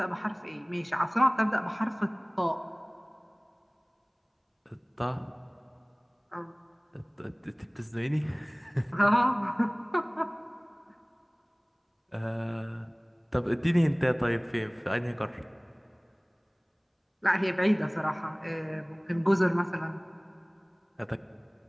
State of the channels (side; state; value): both; identical; correlation 1.00